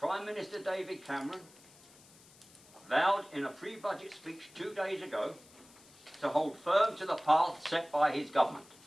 Minister David Cameron vowed in a pre-budget speech 2 days ago to hold firm to the path set by his government.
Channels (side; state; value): left; noise; hiss, 24 dB below the sound